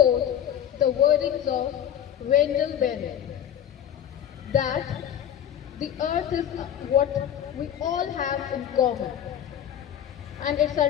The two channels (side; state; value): right; quieter; 9.9 dB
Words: the wordings of Wendell Berry, that the earth is what we all have in common, and it's